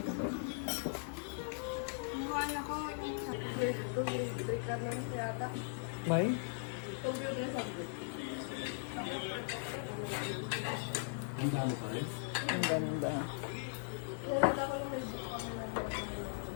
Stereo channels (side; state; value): right; silent; 52 dB below the other